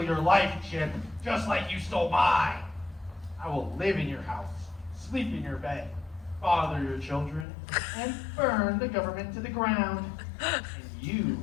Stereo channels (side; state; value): right; drops out; at 7.5 s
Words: your life, Chip, just like you stole mine. I will live in your house, sleep in your bed, father your children, and burn the government to the ground. And you